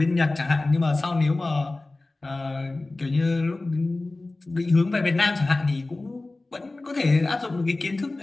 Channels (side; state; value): right; quieter; 3.0 dB